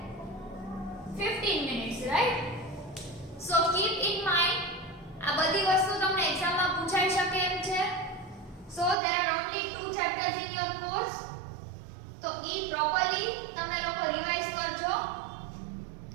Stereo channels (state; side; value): drops out; left; at 9.0 s